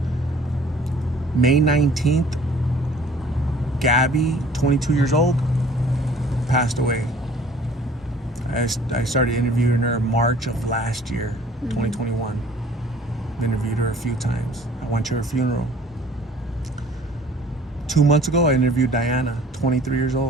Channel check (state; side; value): normal; both; correlation 0.52